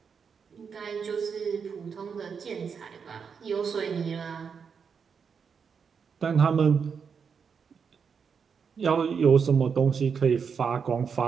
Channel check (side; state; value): left; quieter; 6.3 dB